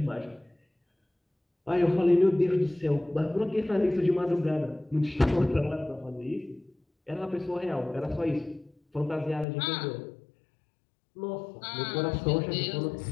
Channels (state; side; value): drops out; right; at 9.5 s